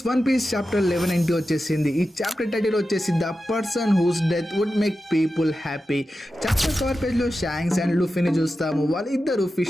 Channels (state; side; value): normal; both; correlation 0.92